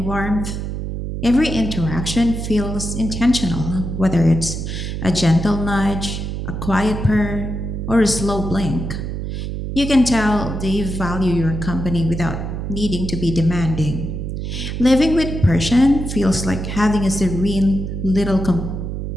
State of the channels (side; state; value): right; noise; hum, 5 dB below the sound